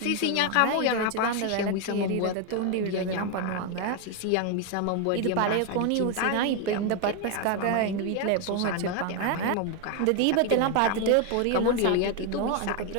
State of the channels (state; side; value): different; both; correlation 0.01